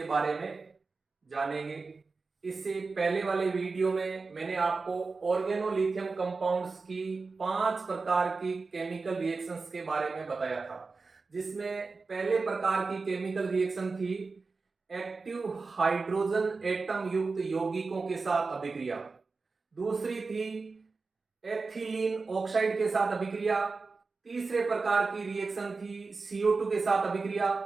बारे में जानेंगे। इससे पहले वाले वीडियो में मैंने आपको ऑर्गेनोलिथियम कंपाउंड्स की 5 प्रकार की केमिकल रिएक्शंस के बारे में बताया था, जिसमें पहले प्रकार की केमिकल रिएक्शन थी एक्टिव हाइड्रोजन एटम युक्त यौगिकों के साथ अभिक्रिया। दूसरी थी एथिलीन ऑक्साइड के साथ अभिक्रिया। तीसरे प्रकार की रिएक्शन थी CO2 के साथ अभिक्रिया।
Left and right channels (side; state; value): left; quieter; 4.1 dB